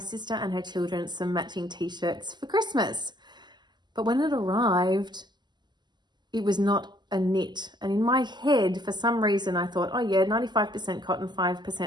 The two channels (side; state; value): left; late; 0.21 ms